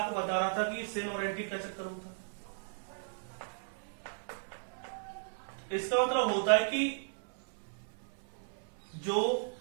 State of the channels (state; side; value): silent; left; 54 dB below the other